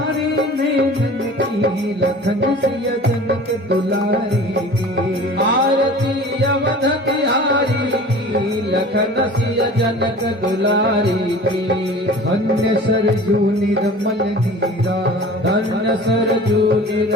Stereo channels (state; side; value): normal; both; correlation 0.41